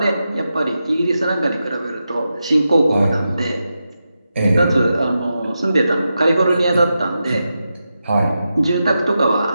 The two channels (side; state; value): both; inverted; correlation -0.89